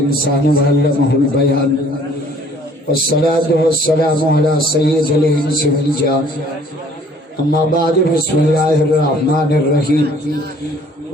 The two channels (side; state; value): both; normal; correlation 0.56